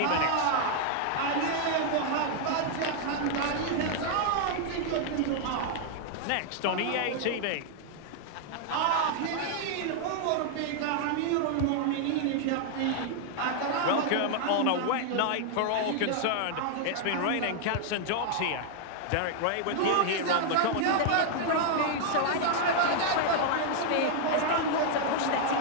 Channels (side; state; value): both; different; correlation 0.00